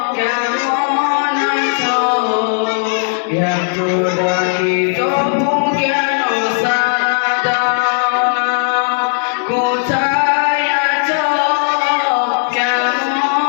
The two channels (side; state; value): right; silent; digital silence